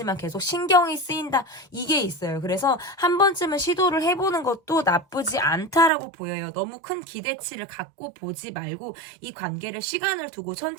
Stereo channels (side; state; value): left; drops out; at 5.9 s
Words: 계속 신경이 쓰인다. 이게 있어요. 그래서 한 번쯤은 시도를 해보는 것도 나쁘지 않다라고 보여요. 너무 큰 기대치를 갖고 보지 말고 이 관계를 시간을 두고